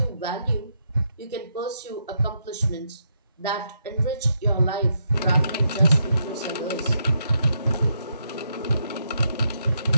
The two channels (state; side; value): inverted; both; correlation -0.79